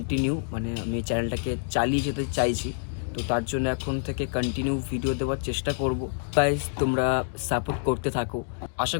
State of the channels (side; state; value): right; silent; digital silence